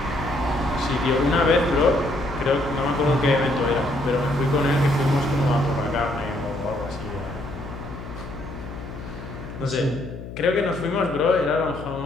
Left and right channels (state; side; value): noise; left; hum, 11 dB below the sound